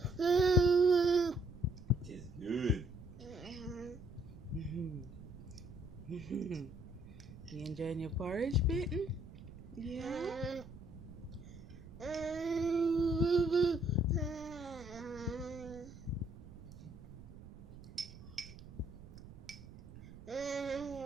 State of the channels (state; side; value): noise; right; rumble, 16 dB below the sound